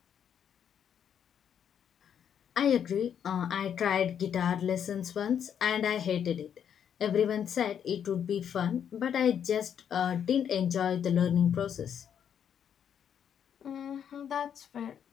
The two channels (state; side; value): quieter; right; 8.5 dB